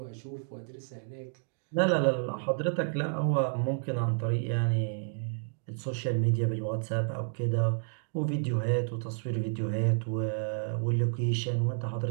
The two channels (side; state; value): left; silent; digital silence